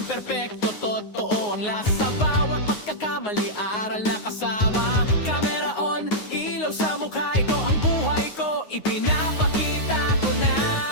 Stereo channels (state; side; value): late; right; 9.5 ms